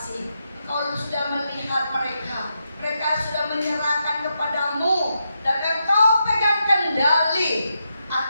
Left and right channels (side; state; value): both; inverted; correlation -0.84